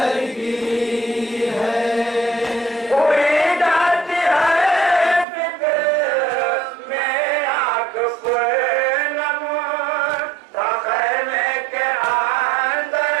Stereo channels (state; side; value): drops out; left; at 5.2 s